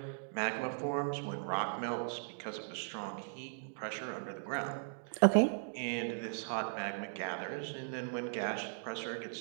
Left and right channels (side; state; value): left; silent; digital silence